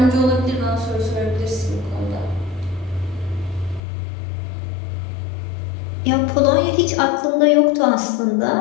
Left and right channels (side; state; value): right; drops out; at 3.8 s